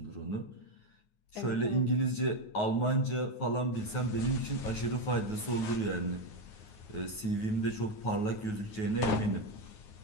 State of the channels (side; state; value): right; late; 9.3 ms